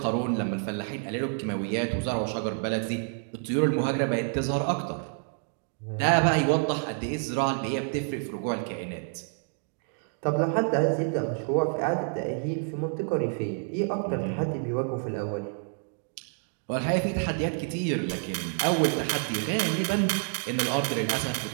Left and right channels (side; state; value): left; silent; 56 dB below the other